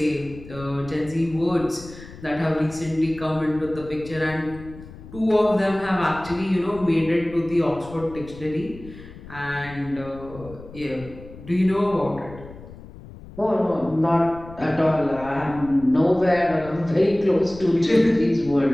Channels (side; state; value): left; noise; rumble, 17 dB below the sound